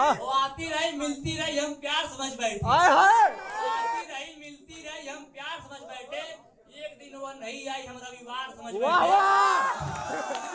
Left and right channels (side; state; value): both; identical; correlation 1.00